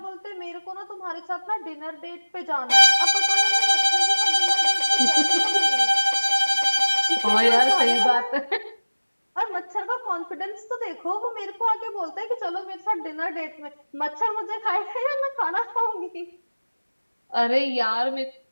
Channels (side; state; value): both; inverted; correlation -1.00